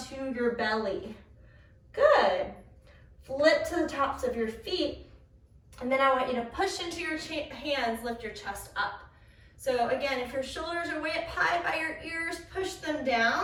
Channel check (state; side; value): identical; both; correlation 1.00